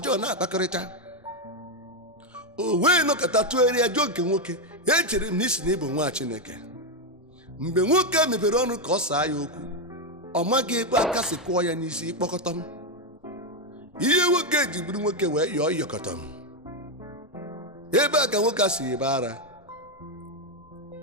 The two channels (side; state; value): both; normal; correlation 0.05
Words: na-akpakọrịta. O wee nọkọta tụgharịa jụọ nke nwoke, echere m na isi na ịbụ nwa Chineke. Mgbe nwoke a mepere ọnụ ka ọ saa ya okwu, ọ maghị ebe aka si kụọ ya n'isi ịkpọkọtọ m. Ihe nwoke ji bụrụ nwoke wee yọọ ịyọkọtọ m. Ebe a ka nwoke a si ebe ara.